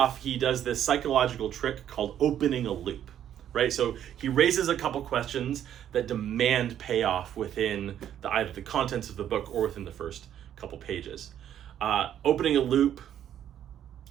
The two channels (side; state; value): left; quieter; 10.4 dB